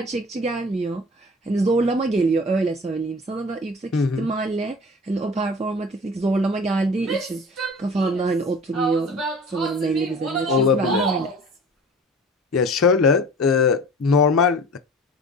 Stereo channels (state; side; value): normal; both; correlation 0.42